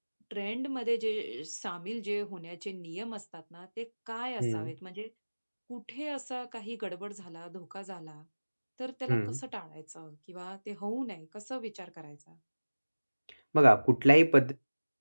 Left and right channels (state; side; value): inverted; both; correlation -1.00